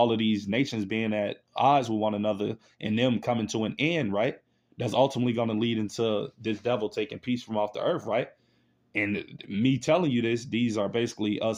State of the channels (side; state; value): both; identical; correlation 1.00